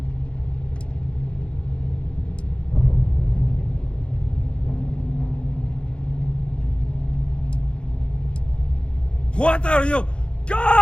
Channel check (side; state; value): right; late; 0.056 ms